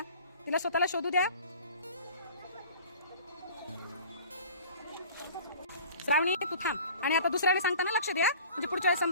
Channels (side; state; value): both; inverted; correlation -0.44